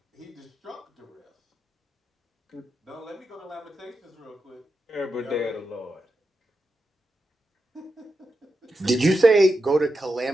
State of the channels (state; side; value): normal; both; correlation 0.88